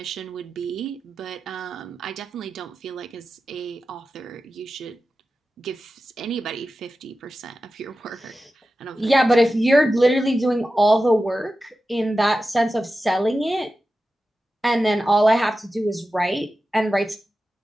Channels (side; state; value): both; normal; correlation 0.93